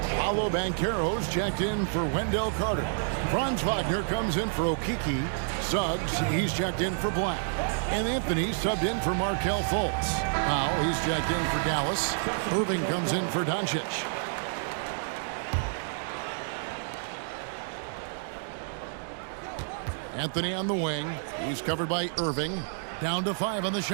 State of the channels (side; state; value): left; silent; digital silence